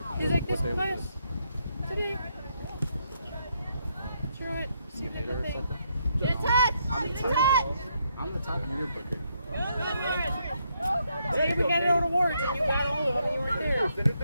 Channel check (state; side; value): inverted; both; correlation -0.76